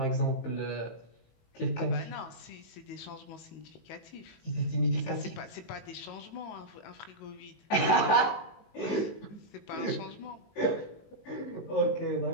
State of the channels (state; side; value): late; right; 19 ms